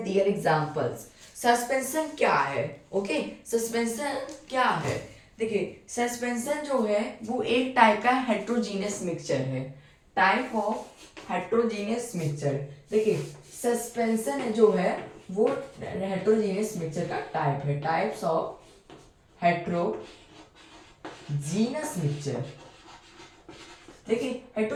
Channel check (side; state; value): both; identical; correlation 1.00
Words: their examples. Suspension क्या है? ओके, सस्पेंशन क्या है? देखिए, सस्पेंशन जो है वो एक टाइप का हेट्रोजीनियस मिक्सचर है. Type of heterogeneous mixture. देखिए, सस्पेंशन जो है वो हेट्रोजीनियस मिक्सचर का टाइप है. Types of heterogeneous mixture. देखिए,